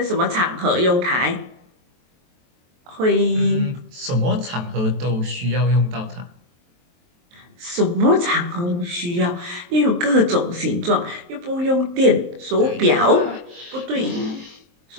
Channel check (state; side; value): late; left; 23 ms